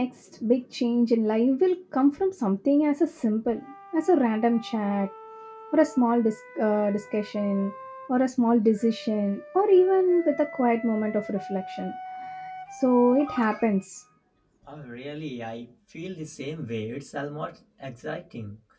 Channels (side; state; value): both; identical; correlation 1.00